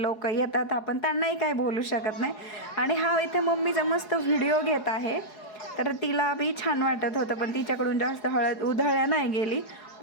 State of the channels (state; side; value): late; right; 4.8 ms